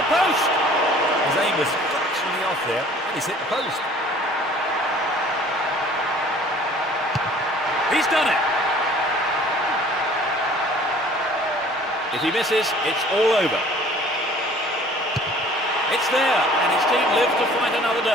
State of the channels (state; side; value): normal; both; correlation 0.51